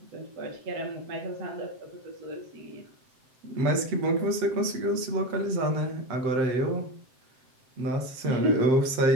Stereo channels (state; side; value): late; left; 7.7 ms